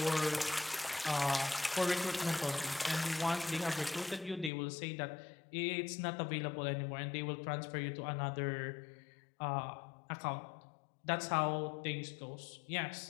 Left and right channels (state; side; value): drops out; right; at 4.5 s